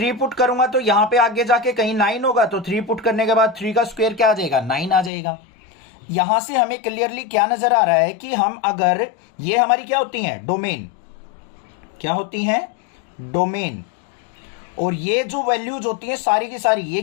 पुट करूंगा तो यहां पे आगे जाके कहीं 9 होगा, तो 3 पुट करने के बाद 3 का स्क्वायर क्या आ जाएगा 9 आ जाएगा। यहां से हमें क्लियरली क्या नजर आ रहा है कि हम अगर ये हमारी क्या होती हैं डोमेन, क्या होती हैं डोमेन, और ये जो वैल्यूज होती हैं सारी की सारी ये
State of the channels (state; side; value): drops out; right; at 5.1 s